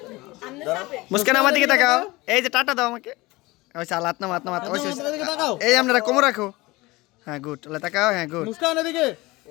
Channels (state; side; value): quieter; right; 21.4 dB